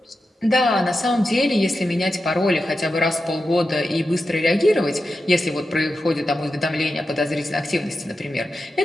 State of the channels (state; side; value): normal; both; correlation 0.90